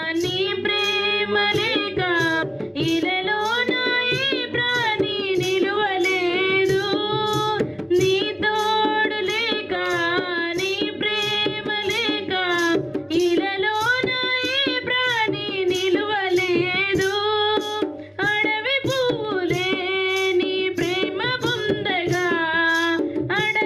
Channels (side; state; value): both; identical; correlation 1.00